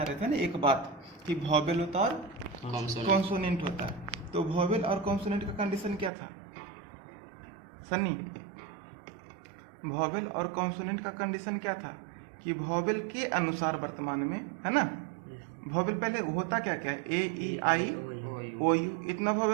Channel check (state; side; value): drops out; left; at 6.1 s